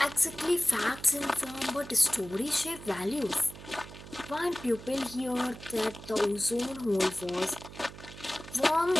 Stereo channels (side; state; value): right; noise; hum, 15 dB below the sound